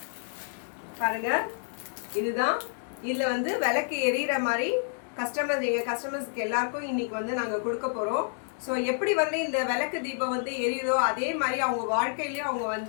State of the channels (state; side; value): silent; right; digital silence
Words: பாருங்க, இதுதான். இதுல வந்து விளக்கு எரியிற மாதிரி கஸ்டமர்ஸ்க்கு எல்லாருக்கும் இன்னைக்கு வந்து நாங்க கொடுக்க போறோம். ஸோ எப்படி வந்து இந்த விளக்கு தீபம் வந்து எரியுதோ அதே மாதிரி அவங்க வாழ்க்கையிலயும் அவங்க